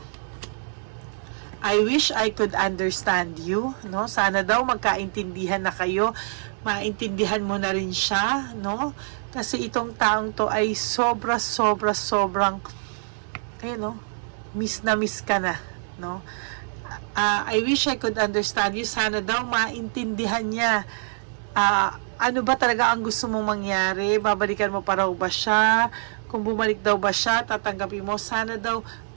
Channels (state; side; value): silent; left; digital silence